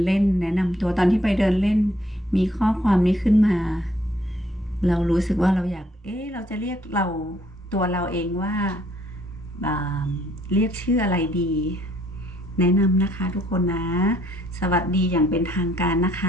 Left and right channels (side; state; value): both; normal; correlation 0.66